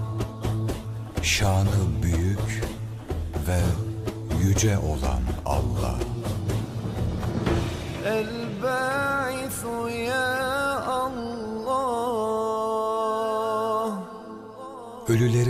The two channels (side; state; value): both; identical; correlation 1.00